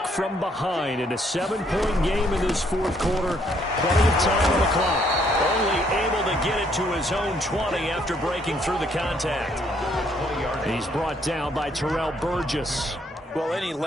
from behind in a 7-point game in this fourth quarter. Plenty of time on the clock. Only able to get it to his own 20 after breaking through the contact. He's brought down by Terrell Burgess. Well, any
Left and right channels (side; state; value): both; normal; correlation 0.68